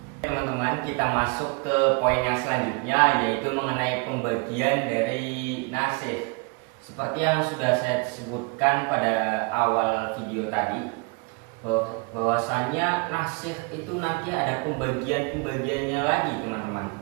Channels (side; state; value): left; quieter; 31.9 dB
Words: Teman-teman, kita masuk ke poin yang selanjutnya yaitu mengenai pembagian dari nasikh. Seperti yang sudah saya sebutkan pada awal video tadi, bahwasanya nasikh itu nanti ada pembagiannya lagi teman-teman.